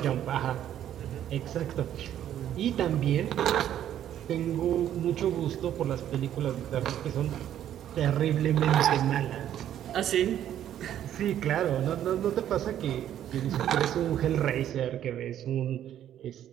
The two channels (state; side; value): quieter; left; 11.0 dB